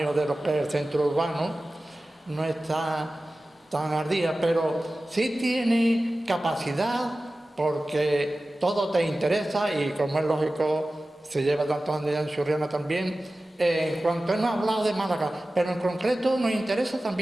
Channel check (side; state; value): both; normal; correlation 0.96